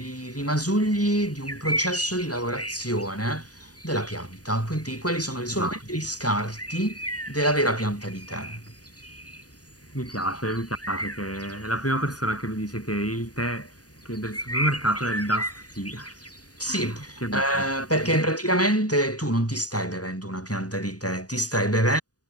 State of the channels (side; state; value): right; late; 0.68 ms